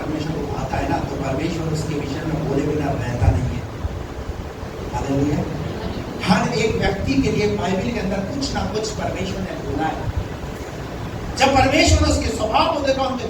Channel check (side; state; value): both; identical; correlation 1.00